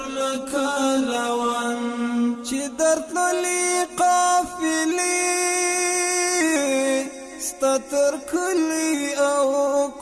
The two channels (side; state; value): both; identical; correlation 1.00